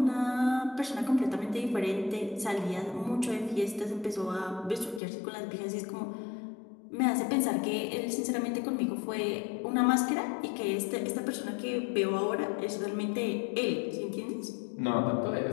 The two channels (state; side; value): drops out; right; at 5.0 s